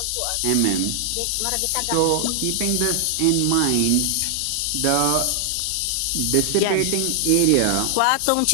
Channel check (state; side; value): different; both; correlation 0.00